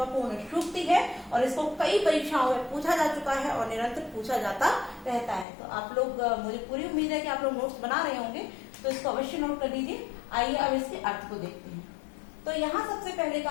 सूक्ति है, और इसको कई परीक्षाओं में पूछा जा चुका है और निरंतर पूछा जाता रहता है। तो आप लोग, मुझे पूरी उम्मीद है कि आप लोग नोट्स बना रहे होंगे, तो इसको अवश्य नोट कर लीजिए। आइए अब इसके अर्थ को देखते हैं। तो यहाँ सबसे पहले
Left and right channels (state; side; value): drops out; right; at 5.5 s